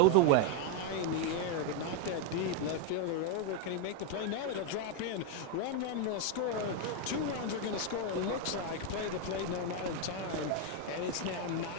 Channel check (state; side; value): different; both; correlation 0.01